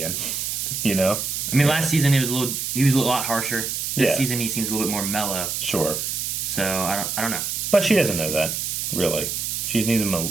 You know? I mean, last season he was a lot harsher. This season he seems a little bit more mellow. Sure. So I don't know. But she doesn't know that, really. She's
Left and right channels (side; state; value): right; noise; hiss, 2 dB below the sound